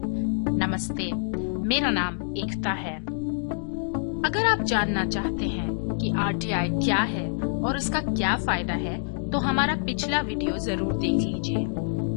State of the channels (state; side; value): silent; right; digital silence